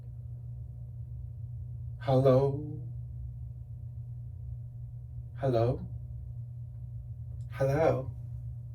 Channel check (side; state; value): both; identical; correlation 1.00